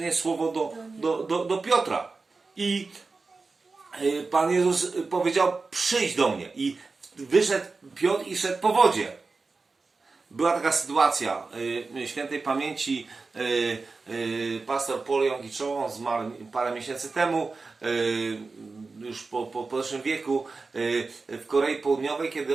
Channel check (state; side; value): quieter; left; 4.0 dB